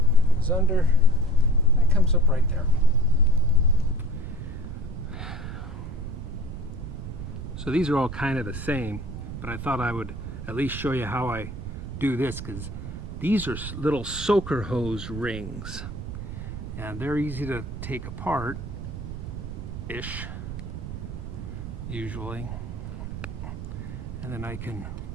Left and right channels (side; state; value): right; noise; rumble, 7 dB below the sound